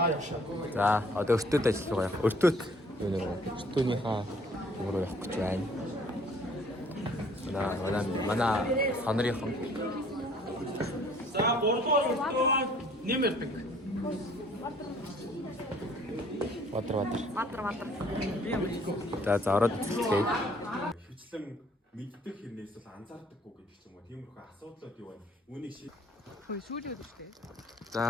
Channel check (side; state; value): both; normal; correlation 0.58